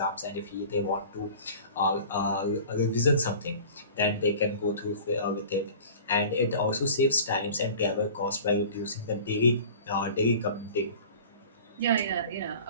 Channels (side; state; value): both; inverted; correlation -0.42